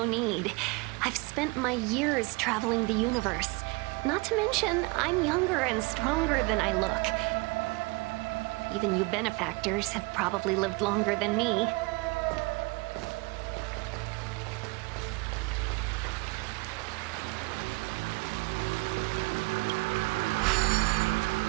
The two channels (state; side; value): quieter; left; 26.1 dB